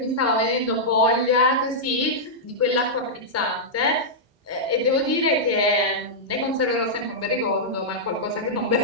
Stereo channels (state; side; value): normal; both; correlation -0.09